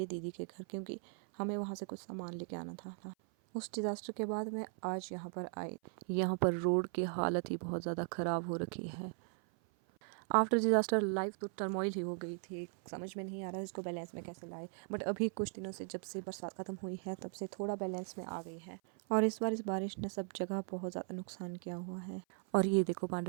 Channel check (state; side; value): silent; left; 52 dB below the other